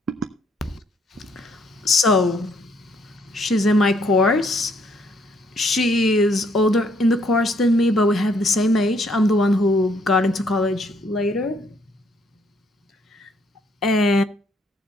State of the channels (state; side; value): normal; both; correlation 0.68